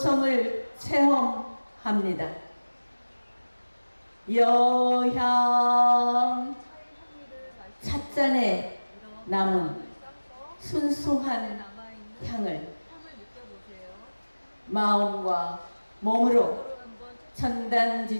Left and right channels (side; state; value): both; inverted; correlation -1.00